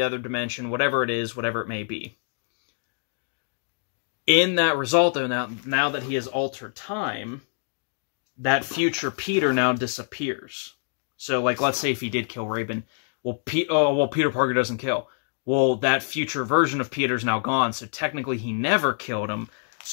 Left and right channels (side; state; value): right; silent; digital silence